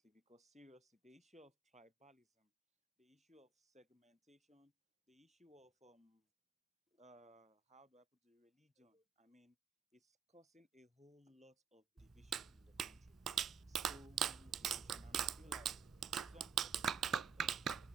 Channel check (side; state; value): left; quieter; 7.3 dB